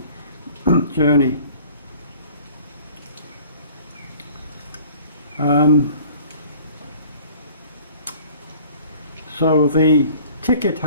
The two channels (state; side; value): inverted; both; correlation -0.50